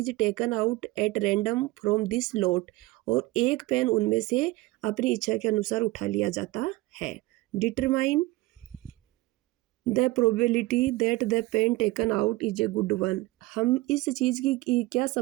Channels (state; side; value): quieter; left; 19.7 dB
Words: taken out at random from this lot. और एक पेन उनमें से अपनी इच्छा के अनुसार उठा लिया जाता है. Determine the probability that the pen taken out is a good one. हम इस चीज़ की क्या